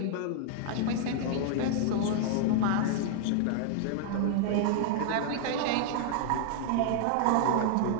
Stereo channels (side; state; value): both; different; correlation -0.01